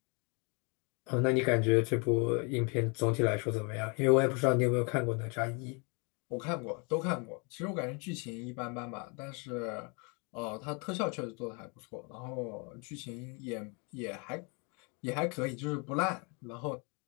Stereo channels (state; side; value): quieter; right; 32.9 dB